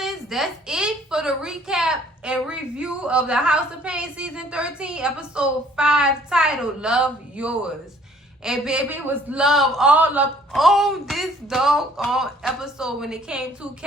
that's it for the recap and review of the House of Payne Season 13, Episode 5, titled Love Yourz. And baby, it was love all up on this doggone episode when it came to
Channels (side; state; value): both; normal; correlation 0.58